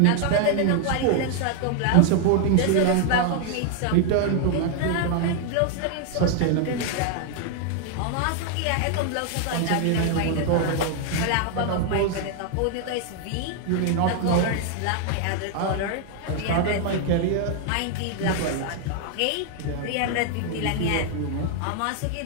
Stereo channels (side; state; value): both; different; correlation 0.00